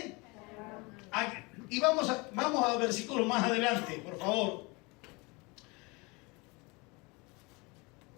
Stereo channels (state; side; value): quieter; right; 26.8 dB